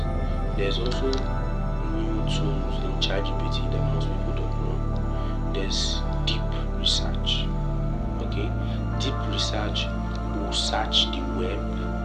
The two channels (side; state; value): both; identical; correlation 1.00